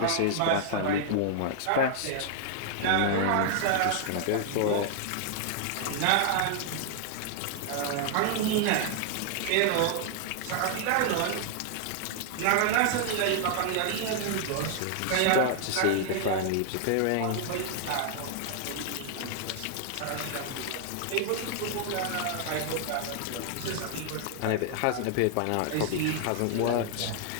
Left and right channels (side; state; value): both; different; correlation 0.00